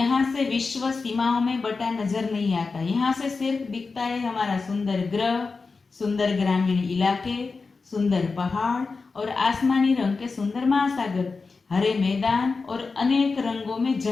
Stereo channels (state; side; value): quieter; right; 4.3 dB